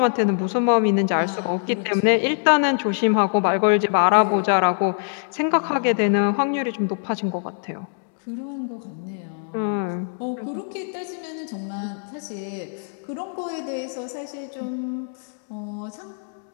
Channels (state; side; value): silent; right; digital silence